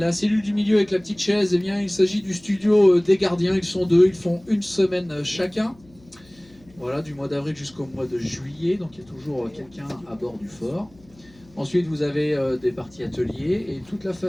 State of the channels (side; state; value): left; noise; hum, 27 dB below the sound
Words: cellule du milieu avec la petite chaise, eh bien, il s'agit du studio des gardiens. Ils sont 2, ils font une semaine chacun. Voilà, du mois d'avril jusqu'au mois de juillet, donc il y a toujours quelqu'un à bord du fort. Ensuite, vous avez des parties ateliers et toute la